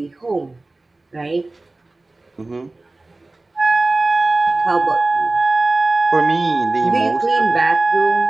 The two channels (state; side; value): quieter; left; 3.1 dB